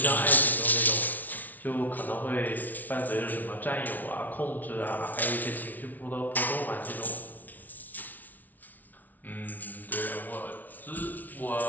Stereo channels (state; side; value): late; right; 0.080 ms